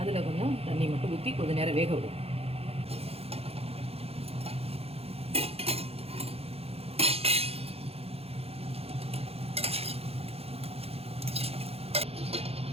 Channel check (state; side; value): late; left; 0.29 ms